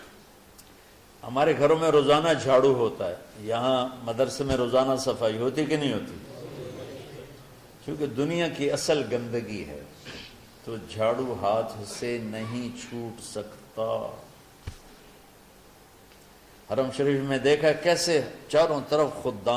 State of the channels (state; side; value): identical; both; correlation 1.00